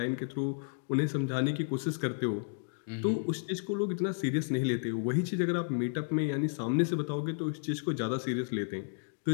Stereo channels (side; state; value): right; silent; digital silence